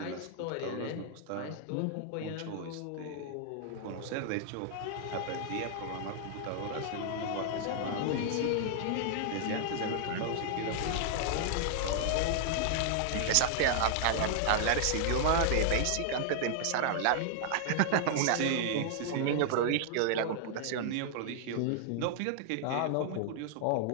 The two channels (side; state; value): both; different; correlation -0.01